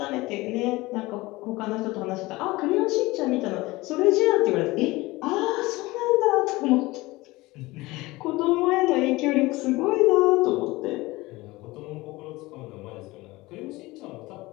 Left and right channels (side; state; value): right; quieter; 20.6 dB